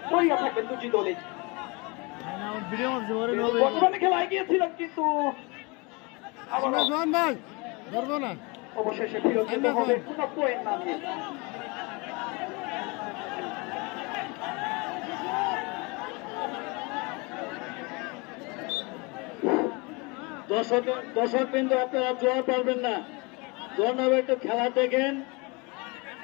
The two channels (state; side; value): quieter; right; 28.1 dB